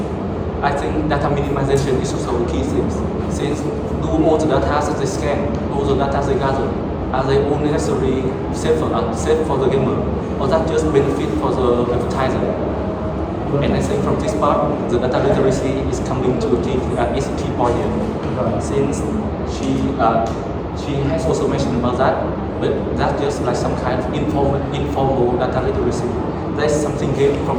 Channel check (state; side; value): identical; both; correlation 1.00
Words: I think data minimization is also a key thing. Since do all the data that they scan, all the data they gather, are they all necessarily safe for the gamer, or that just benefit for the advertiser? And I think from this part, the data literacy is coming to is a key point here. Right. Since she has also mentioned about that, but that's just like some kind of informal data literacy. That's something gained